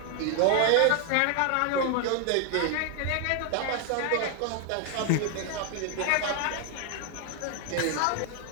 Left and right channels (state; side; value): different; both; correlation 0.00